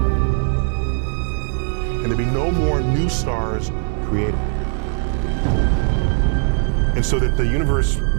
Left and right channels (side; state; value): left; silent; 66 dB below the other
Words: And there'll be no more new stars created. And so that the universe